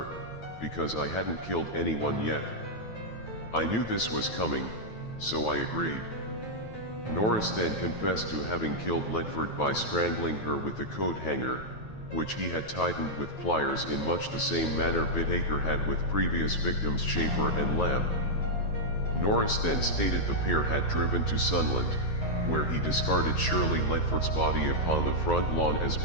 because I hadn't killed anyone yet. I knew this was coming, so I agreed. Norris then confessed to having killed Ledford by strangling her with a coat hanger, which he had tightened with pliers in much the same manner Bittaker had with previous victims Schaefer and Lamb. Norris then stated the pair had driven to Sunland, where he discarded Shirley Ledford's body upon the front lawn as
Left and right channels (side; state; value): right; late; 9.3 ms